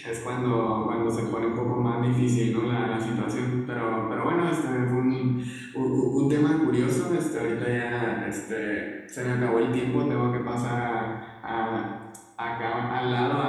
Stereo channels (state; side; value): identical; both; correlation 1.00